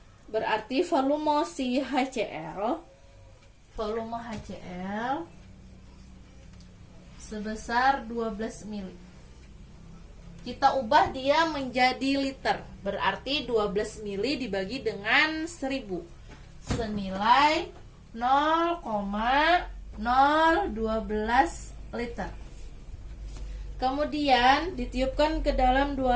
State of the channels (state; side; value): identical; both; correlation 1.00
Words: Berarti volume si HCl sebesar 12 mili. Kita ubah dia menjadi liter. Berarti 12 mili dibagi dengan 1000. Senilai 0,012 liter. Kemudian ditiupkan ke dalam